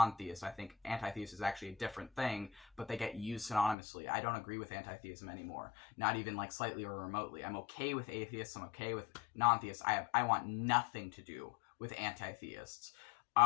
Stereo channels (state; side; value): drops out; right; at 3.8 s